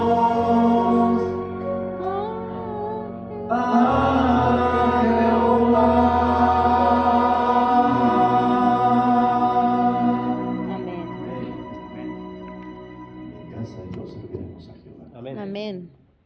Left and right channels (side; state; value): both; identical; correlation 1.00